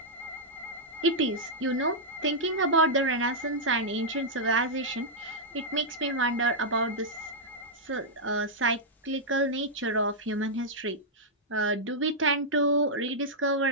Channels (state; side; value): normal; both; correlation -0.08